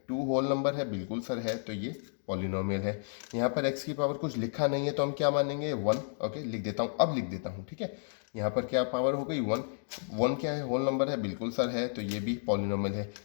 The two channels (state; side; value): silent; right; digital silence